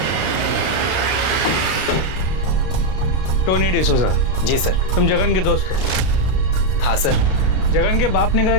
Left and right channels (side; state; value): right; late; 32 ms